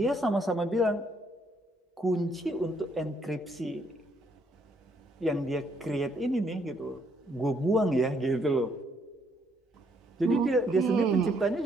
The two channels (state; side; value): normal; both; correlation 0.70